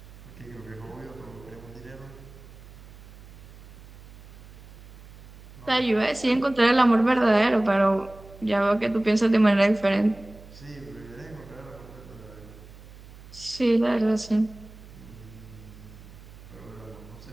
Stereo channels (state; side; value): noise; right; hum, 19 dB below the sound